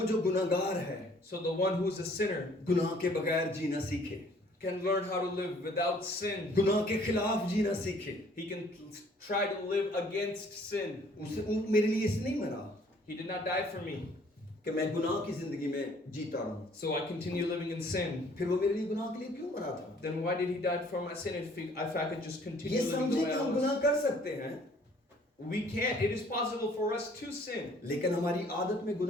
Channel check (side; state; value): both; normal; correlation 0.58